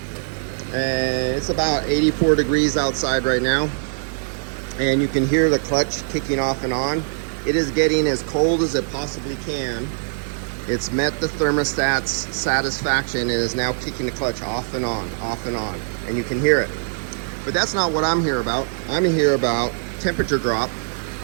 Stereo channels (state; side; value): silent; left; 64 dB below the other